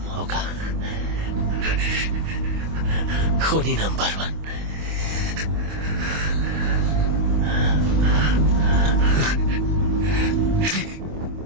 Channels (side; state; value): left; late; 25 ms